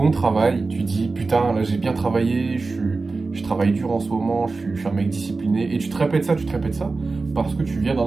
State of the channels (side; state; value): left; quieter; 3.8 dB